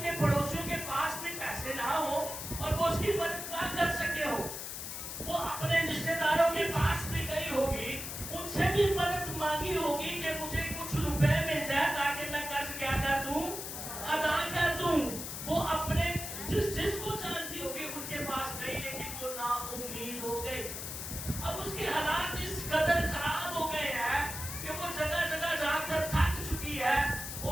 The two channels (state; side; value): noise; left; hiss, 7 dB below the sound